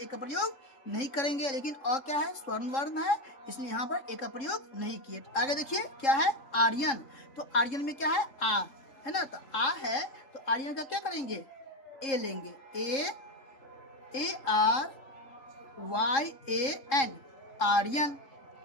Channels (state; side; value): late; right; 3.7 ms